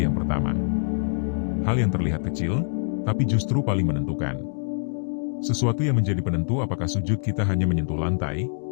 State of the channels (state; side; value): silent; right; digital silence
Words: yang pertama. Hal yang terlihat kecil, tapi justru paling menentukan. Sesuatu yang menjadi penentu apakah sujud kita hanya menyentuh lantai,